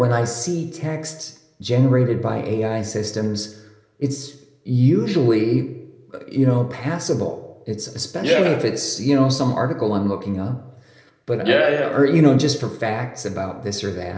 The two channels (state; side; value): identical; both; correlation 1.00